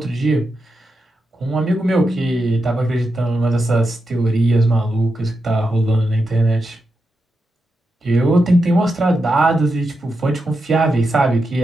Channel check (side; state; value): both; normal; correlation 0.87